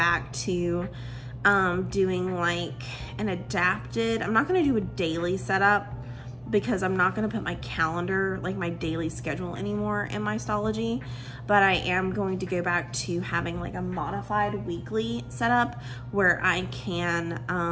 to doing like an adapted, I'm not gonna do a daily setup because I'm not gonna put my calendar, like my daily schedule anymore in my Stalogy, but I am going to go back to having like a modified weekly setup where I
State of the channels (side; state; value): both; identical; correlation 1.00